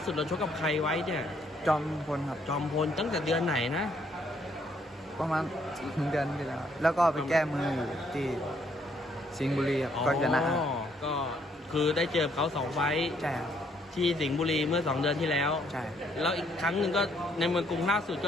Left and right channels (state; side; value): normal; both; correlation 0.69